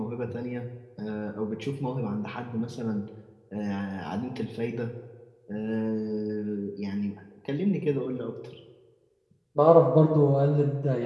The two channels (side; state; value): both; identical; correlation 1.00